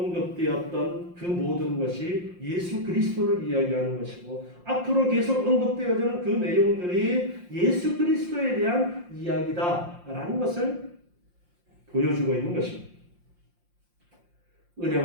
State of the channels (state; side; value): late; left; 5.7 ms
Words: 그 모든 것이 예수 그리스도를 이야기하는 것이고 앞으로 계속 언급되어지는 그 내용들이 예수 그리스도에 대한 이야기다라는 것을 보여주고 있는 것입니다.